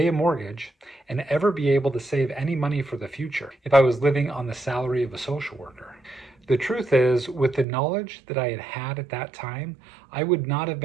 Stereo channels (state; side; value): drops out; left; at 7.7 s